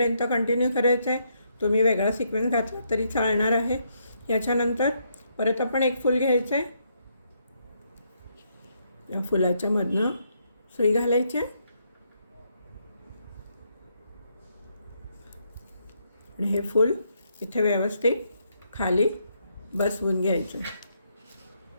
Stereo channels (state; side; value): inverted; both; correlation -0.75